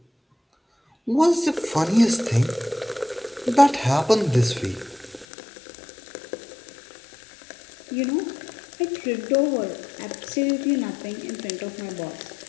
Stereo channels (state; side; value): drops out; right; at 5.2 s